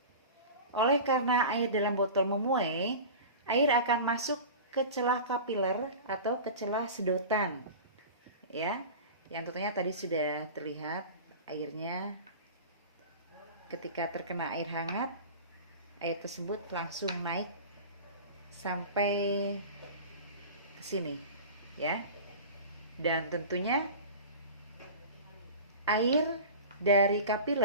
Oleh karena air dalam botol memuai, air akan masuk ke celah kapiler atau ke celah sedotan. Ya, yang tentunya tadi sudah terlihat airnya ketika terkena air hangat, air tersebut langsung naik sampai ke sini, ya. Dan tentunya air dari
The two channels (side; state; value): both; inverted; correlation -0.34